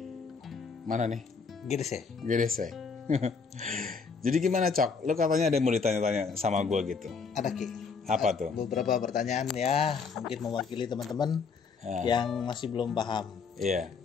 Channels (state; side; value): quieter; right; 5.3 dB